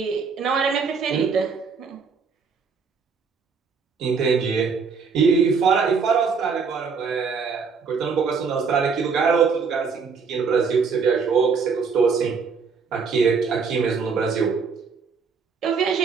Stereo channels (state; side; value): quieter; left; 5.5 dB